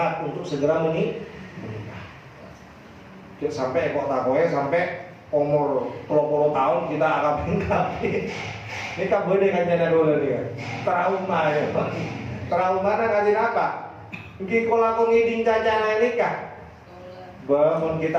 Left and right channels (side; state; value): both; identical; correlation 1.00